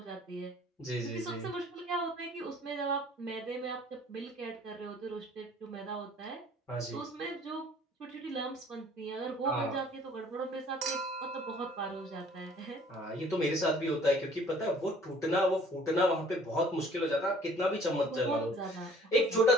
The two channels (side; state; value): both; normal; correlation 0.54